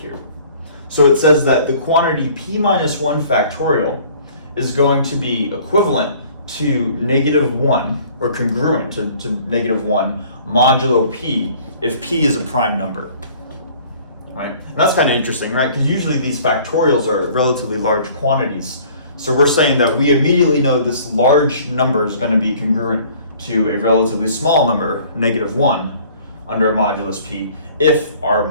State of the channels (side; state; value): both; inverted; correlation -0.53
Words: So it says that the quantity p minus 1 factorial is going to be equivalent to -1, or congruent to -1 modulo p if p is a prime number. Right, and that's kind of interesting, right? Because usually these factorials are relatively large quantities. So we're saying that we immediately know this large number is going to be congruent to a relatively small number, -1, under a modulus p, if our